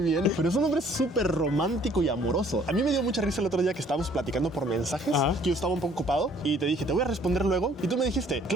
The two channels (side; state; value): both; normal; correlation 0.58